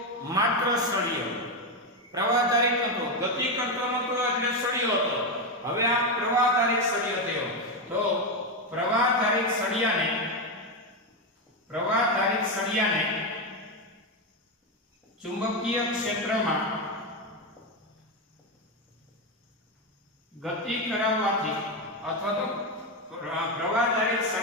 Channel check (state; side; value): normal; both; correlation 0.09